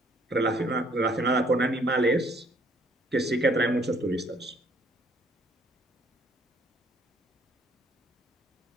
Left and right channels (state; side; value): normal; both; correlation 0.63